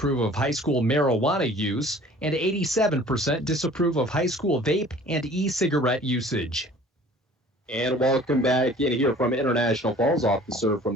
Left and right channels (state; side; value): normal; both; correlation 0.49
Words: of high school marijuana use, and 87% disapprove of high school vape and e-cigarette usage. And welcome back in here from International Falls, off the serve